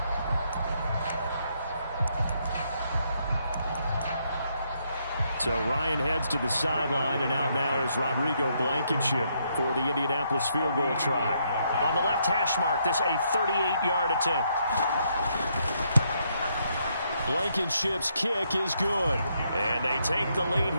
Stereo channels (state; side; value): inverted; both; correlation -0.75